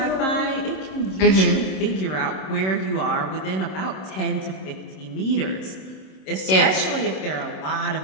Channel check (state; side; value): late; right; 26 ms